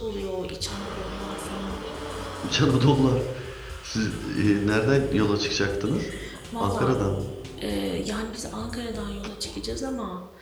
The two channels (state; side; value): identical; both; correlation 1.00